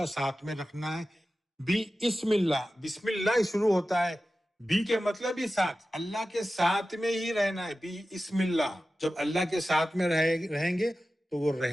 ساتھ میں رکھنا ہے. بسم بسم اللہ شروع ہوتا ہے. بی کے مطلب ہی ساتھ، اللہ کے ساتھ میں ہی رہنا ہے. بسم اللہ، جب اللہ کے ساتھ میں رہیں گے تو وہ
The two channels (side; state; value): both; normal; correlation 0.94